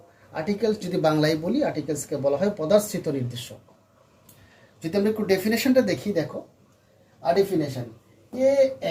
আর্টিকেলস যদি বাংলায় বলি, আর্টিকেলসকে বলা হয় পদার্থিত নির্দেশক. যদি আমরা একটু ডেফিনেশনটা দেখি, দেখো ডেফিনেশন এ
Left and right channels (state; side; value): identical; both; correlation 1.00